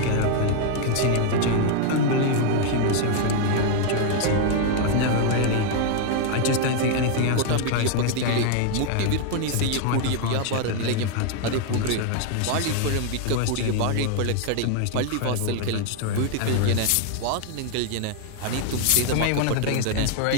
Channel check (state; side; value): different; both; correlation 0.00